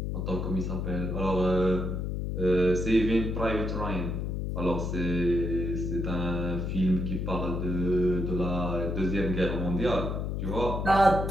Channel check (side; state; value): left; noise; hum, 2 dB below the sound